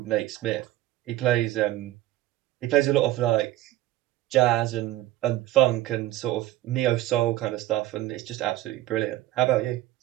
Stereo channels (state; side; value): quieter; left; 15.4 dB